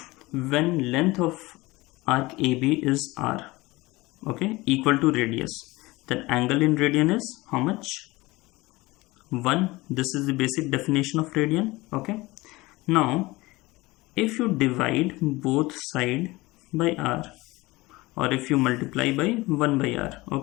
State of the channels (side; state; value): right; quieter; 21.1 dB